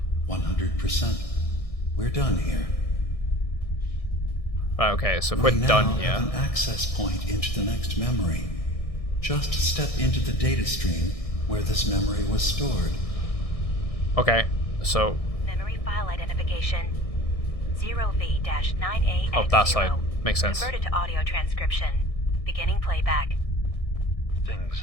100%. We're done here. Right, okay, so if we're done here. Have an access point into the next memory. Just step into the data stream where this memory was stored. Okay, so... Memory file identification 0V-9AX0. Oh, that side. Makes sense. Converted to audio transcription. Beginning playback. Things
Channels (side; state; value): right; late; 1.6 ms